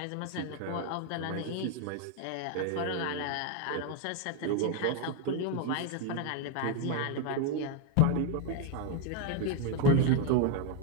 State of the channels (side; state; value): both; different; correlation 0.01